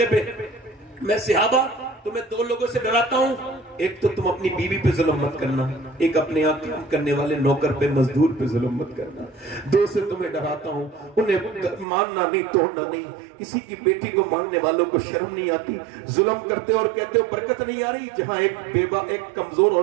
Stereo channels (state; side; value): drops out; left; at 11.9 s